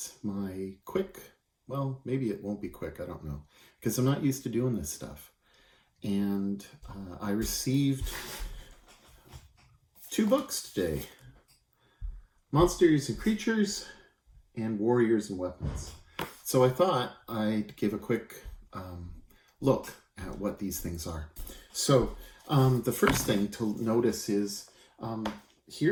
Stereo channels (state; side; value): identical; both; correlation 1.00